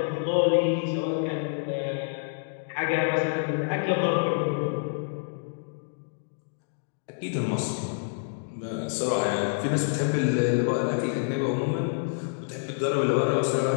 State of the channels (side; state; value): right; silent; digital silence